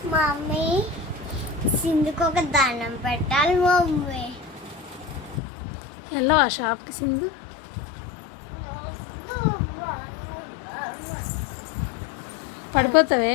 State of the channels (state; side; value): drops out; right; at 5.4 s